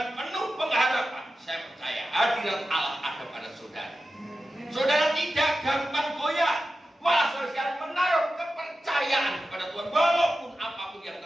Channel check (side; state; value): both; normal; correlation 0.93